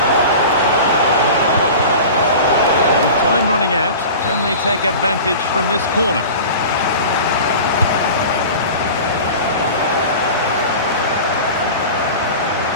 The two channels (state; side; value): inverted; both; correlation -0.35